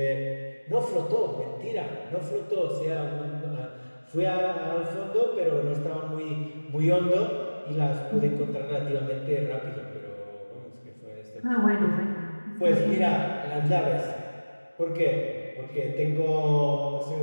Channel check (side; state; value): both; inverted; correlation -1.00